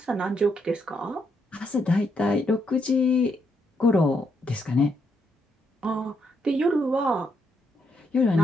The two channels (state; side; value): normal; both; correlation 0.77